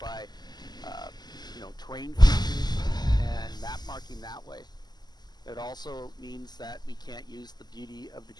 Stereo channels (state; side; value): late; right; 0.20 ms